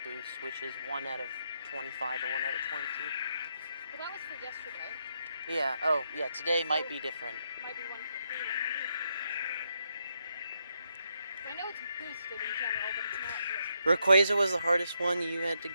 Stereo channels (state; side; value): inverted; both; correlation -0.79